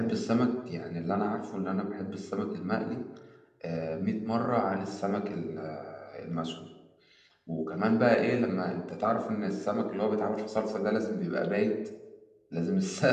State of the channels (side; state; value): both; identical; correlation 1.00